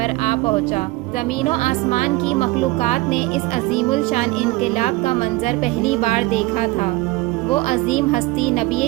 آ پہنچا۔ زمین و آسمان کی مخلوقات نے اس عظیم الشان انقلاب کا منظر پہلی بار دیکھا تھا۔ وہ عظیم ہستی نبی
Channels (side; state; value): left; quieter; 20.3 dB